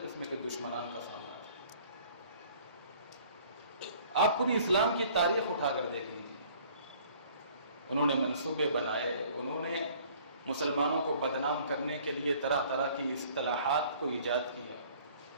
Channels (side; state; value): both; inverted; correlation -0.54